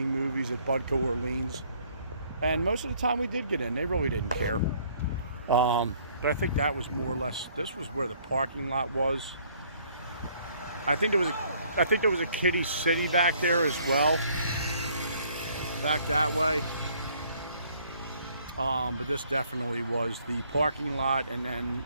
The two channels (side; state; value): both; inverted; correlation -0.61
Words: movies at Budco Orleans. And most of the time we did get in. They really didn't care. But I think that was more or less, this was where the parking lot was. I think there was a Kiddie City back there as well. Back that way. But this definitely was the parking lot, and then